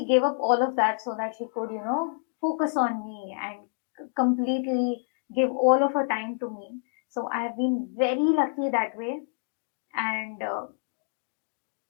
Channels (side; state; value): right; silent; digital silence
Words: gave up all of that so that she could focus on me and completely give all of her time to me. So I have been very lucky that way. And